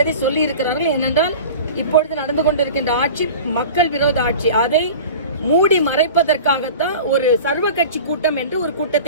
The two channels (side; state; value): both; inverted; correlation -0.37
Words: சொல்லி இருக்கிறார்கள். ஏனென்றால் இப்பொழுது நடந்து கொண்டிருக்கின்ற ஆட்சி மக்கள் விரோத ஆட்சி. அதை மூடி மறைப்பதற்காகத்தான் ஒரு சர்வ கட்சி கூட்டம் என்று ஒரு